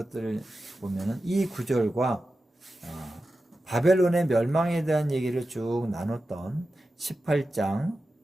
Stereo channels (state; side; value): normal; both; correlation 0.92